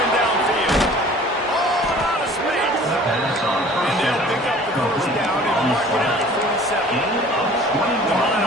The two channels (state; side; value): normal; both; correlation 0.48